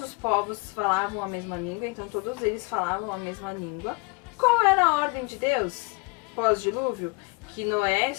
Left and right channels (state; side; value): quieter; right; 28.5 dB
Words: os povos falavam a mesma língua, então todos eles falavam a mesma língua. Qual era a ordem de Deus pós-dilúvio? Que Noé e